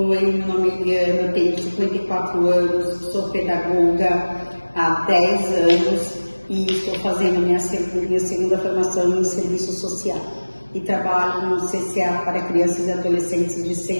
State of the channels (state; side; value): inverted; both; correlation -1.00